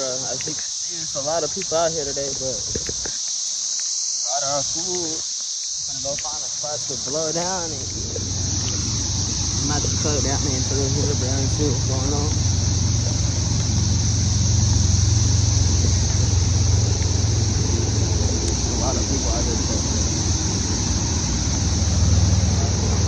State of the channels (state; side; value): identical; both; correlation 1.00